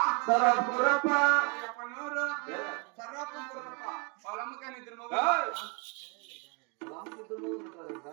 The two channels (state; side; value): quieter; left; 31.0 dB